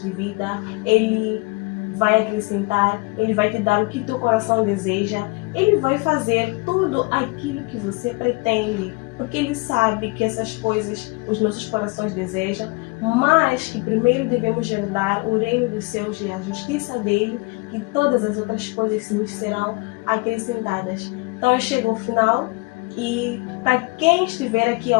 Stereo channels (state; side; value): quieter; right; 26.6 dB